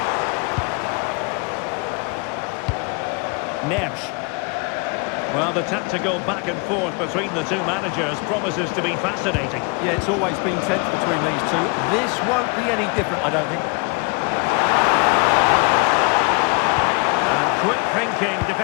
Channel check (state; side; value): quieter; right; 31.5 dB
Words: Neves. Well, the tactical back and forth between the two managers promises to be fascinating. Yeah, it's always been tense between these two. This won't be any different, I don't think. And quick thinking